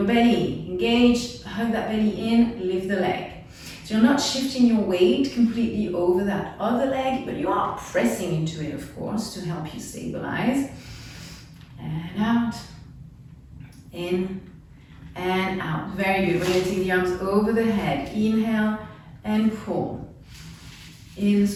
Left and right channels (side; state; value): both; identical; correlation 1.00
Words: belly, engage, hug that belly in, lift the leg. So you're not shifting your weight completely over that other leg, but you are pressing into it, of course, to help you stabilize. And out, in, and out. Very good. We're going to take the arms over the head. Inhale and pull. In,